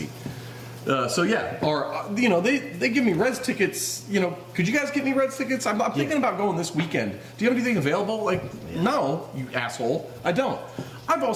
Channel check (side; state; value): both; identical; correlation 1.00